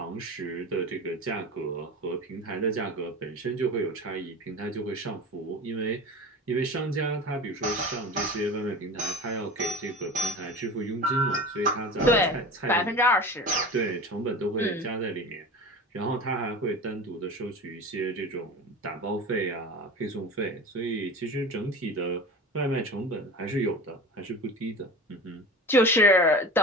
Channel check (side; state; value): both; normal; correlation 0.33